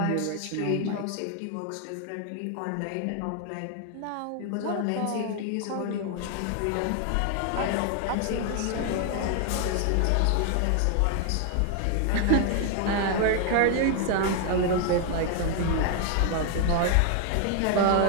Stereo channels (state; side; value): different; both; correlation 0.00